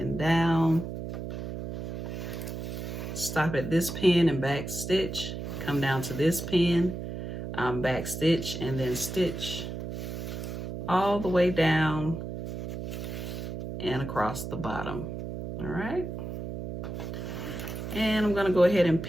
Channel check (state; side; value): noise; right; hum, 6 dB below the sound